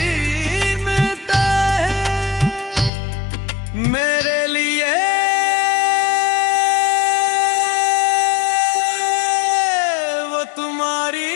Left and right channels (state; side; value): drops out; right; at 2.9 s